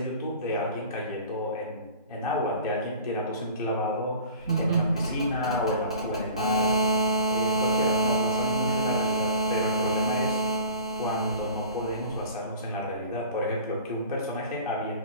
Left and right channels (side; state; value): both; inverted; correlation -0.42